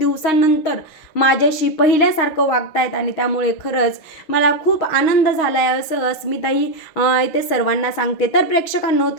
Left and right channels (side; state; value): right; late; 6.4 ms